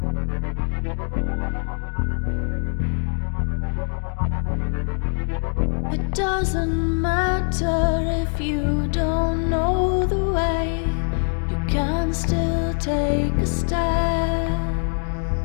It doesn't matter if you don't know the way, you can still take a step.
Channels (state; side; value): silent; right; 56 dB below the other